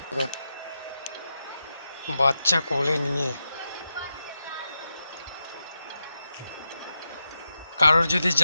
বাচ্চা কোলে নিয়ে, কারোর যদি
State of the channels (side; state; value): both; inverted; correlation -0.88